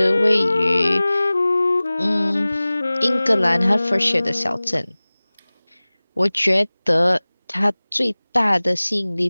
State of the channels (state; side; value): inverted; both; correlation -0.99